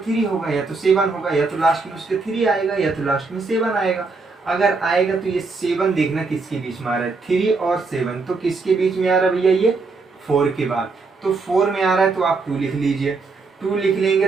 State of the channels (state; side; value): quieter; left; 4.0 dB